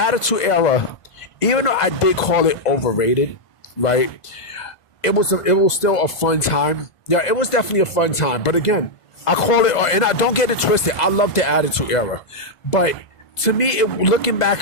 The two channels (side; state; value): right; late; 1.5 ms